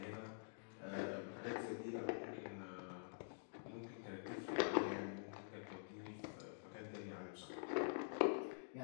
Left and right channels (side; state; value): right; silent; digital silence